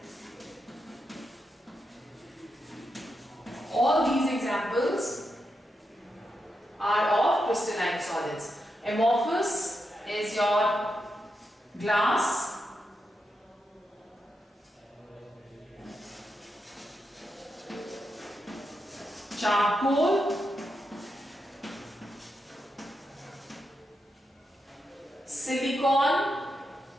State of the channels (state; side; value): normal; both; correlation 0.86